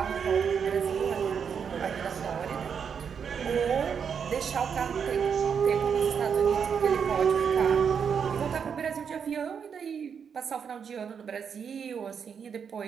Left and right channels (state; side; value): quieter; left; 6.9 dB